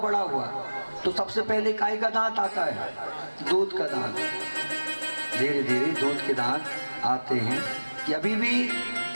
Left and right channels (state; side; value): inverted; both; correlation -1.00